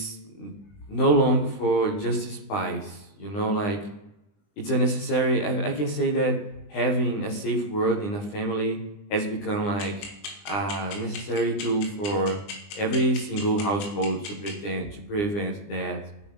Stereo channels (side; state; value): right; late; 20 ms